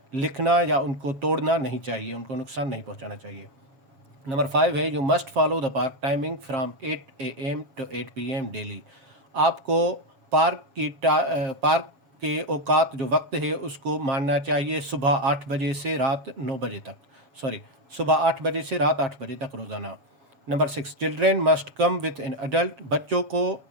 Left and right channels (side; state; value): left; late; 7.2 ms